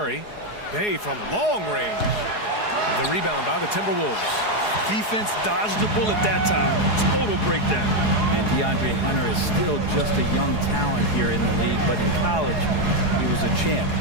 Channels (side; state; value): right; late; 4.8 ms